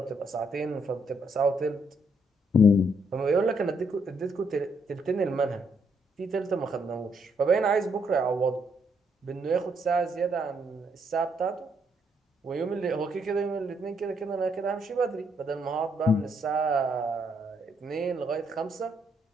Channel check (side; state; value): both; normal; correlation 0.73